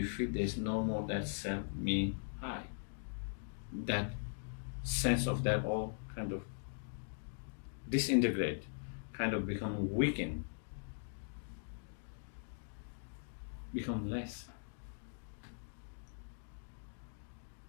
feel there's no more that self, me, I, that sense of that all kind of disintegrate, kind of become weakened, become less.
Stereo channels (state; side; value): silent; right; digital silence